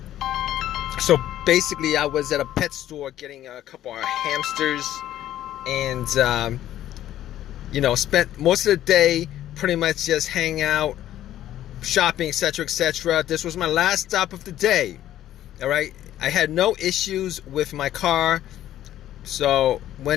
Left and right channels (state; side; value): quieter; right; 12.6 dB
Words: So basically I was at a pet store getting a couple of hamsters and spent most of the day pretty much just hanging out, shopping, etc., etc. This was my last stop of the day. All right, I had no issues with my car, so